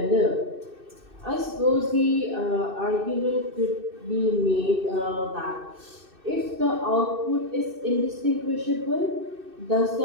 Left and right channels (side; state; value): left; late; 2.6 ms